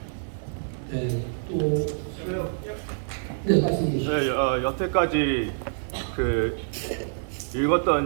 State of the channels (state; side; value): silent; left; digital silence